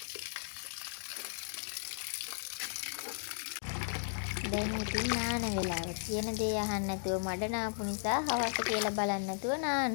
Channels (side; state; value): right; silent; digital silence